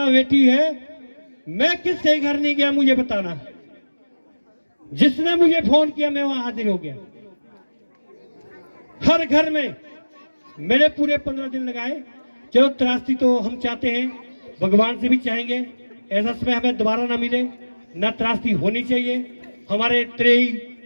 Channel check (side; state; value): both; inverted; correlation -1.00